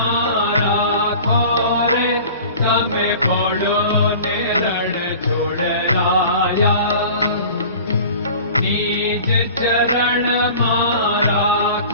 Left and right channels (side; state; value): both; inverted; correlation -0.42